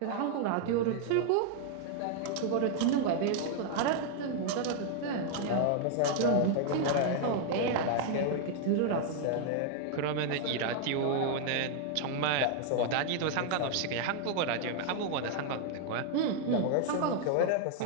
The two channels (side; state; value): both; different; correlation 0.00